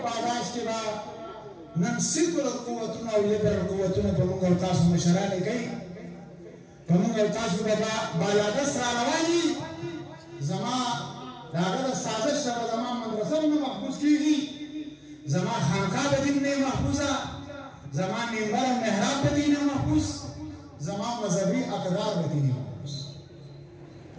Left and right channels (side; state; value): both; identical; correlation 1.00